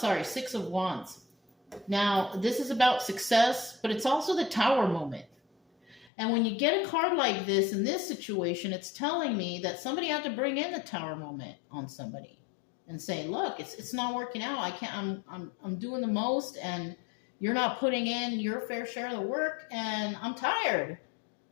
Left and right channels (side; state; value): right; drops out; at 6.1 s